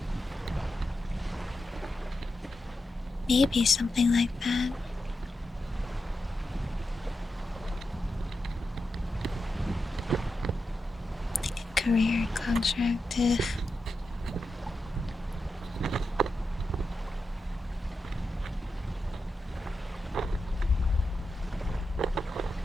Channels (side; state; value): both; normal; correlation 0.88